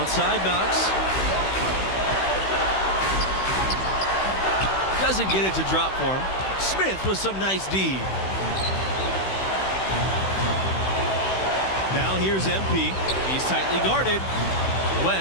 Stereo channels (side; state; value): right; late; 16 ms